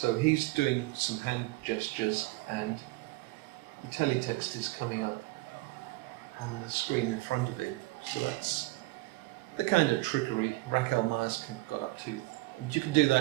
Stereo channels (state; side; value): quieter; left; 21.0 dB